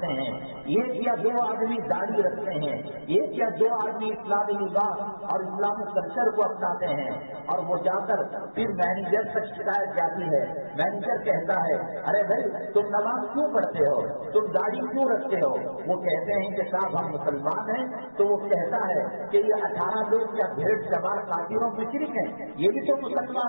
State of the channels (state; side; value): inverted; both; correlation -1.00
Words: ہیں، 1 یا 2 آدمی داڑھی رکھتے ہیں، 1 یا 2 آدمی اسلامی لباس اور اسلامی کلچر کو اپناتے ہیں، اور وہ جا کر پھر مینیجر تک شکایت جاتی ہے۔ مینیجر کہتا ہے ارے بھائی تم نماز کیوں پڑھتے ہو، تم داڑھی کیوں رکھتے ہو؟ وہ کہتے ہیں کہ صاحب ہم مسلمان ہیں، تو وہ کہتا ہے کہ یہ 18 لوگ کیا بھیڑ سوار کافروں مشرک ہیں؟ یہ بھی تو